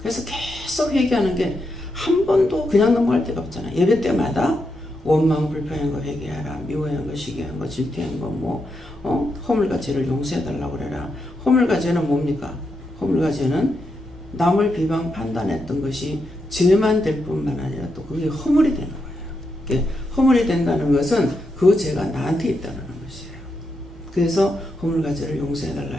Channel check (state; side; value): normal; both; correlation 0.84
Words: 계속 회개하는 게 한 번도 그냥 넘어갈 데가 없잖아요. 예배 때마다 원망, 불평한 거 회개하라, 미워한 거, 시기한 거, 질투한 거, 허물과 죄를 용서해달라고 그래라. 허물과 죄는 뭡니까? 허물과 죄는 남을 비방 판단했던 것이 죄만 될 뿐만 아니라 또 그게 허물이 되는 거예요. 허물이 된다는 것은 그 죄가 나한테 있다는 것이에요. 그래서 허물과 죄를 용서해달라